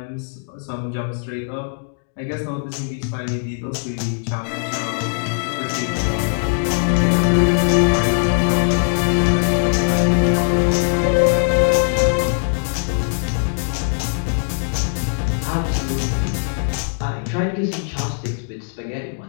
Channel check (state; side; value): silent; right; digital silence